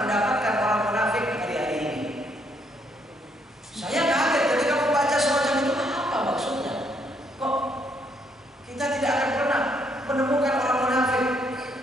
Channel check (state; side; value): normal; both; correlation 0.71